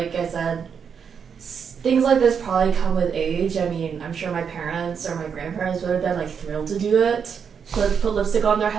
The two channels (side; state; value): left; quieter; 6.9 dB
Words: I said, things like this probably come with age. I mean, I'm sure my parents or my grandparents would have been like thrilled to do it, put lipstick on their